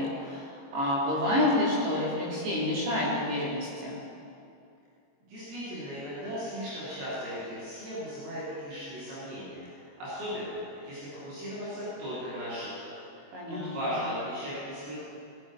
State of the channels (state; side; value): late; left; 22 ms